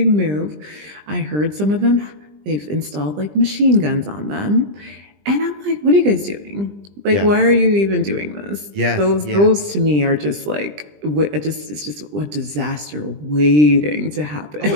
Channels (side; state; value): left; late; 20 ms